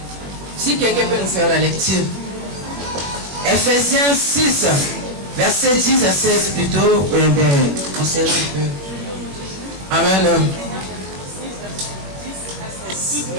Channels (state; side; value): late; left; 21 ms